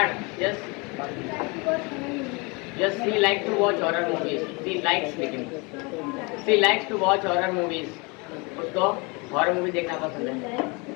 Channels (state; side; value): quieter; right; 28.7 dB